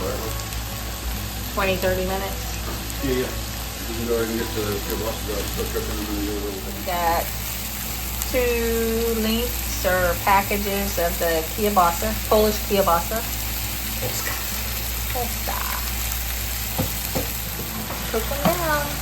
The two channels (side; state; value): both; identical; correlation 1.00